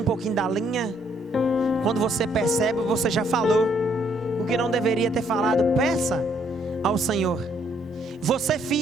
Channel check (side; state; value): both; normal; correlation 0.68